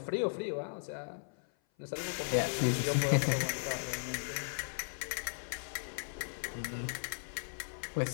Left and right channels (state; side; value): silent; right; 53 dB below the other